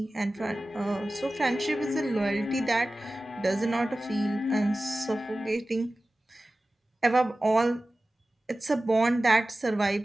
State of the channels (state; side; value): normal; both; correlation 0.96